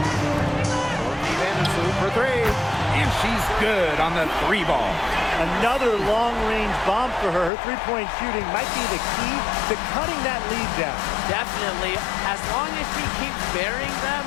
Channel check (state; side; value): drops out; right; at 7.5 s